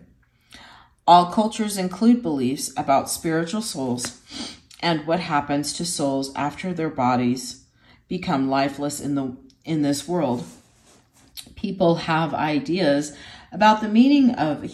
All cultures include beliefs about spiritual souls and what happens to souls after their bodies become lifeless in this world. People have ideas about the meaning of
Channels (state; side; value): identical; both; correlation 1.00